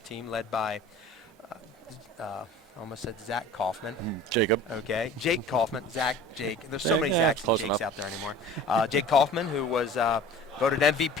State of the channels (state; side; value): normal; both; correlation 0.42